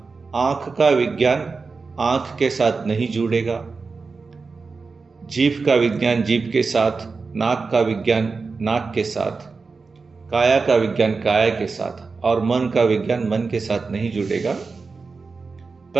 आंख का विज्ञान आंख के साथ नहीं जुड़ेगा, जीभ का विज्ञान जीभ के साथ, नाक का विज्ञान नाक के साथ, काया का विज्ञान काया के साथ, और मन का विज्ञान मन के साथ नहीं जुड़ेगा,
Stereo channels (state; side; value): quieter; left; 4.4 dB